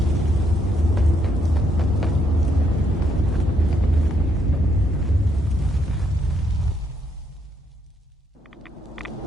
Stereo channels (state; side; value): normal; both; correlation 0.73